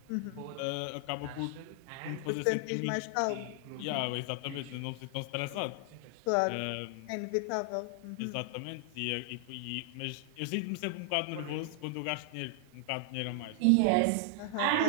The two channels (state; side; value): different; both; correlation 0.00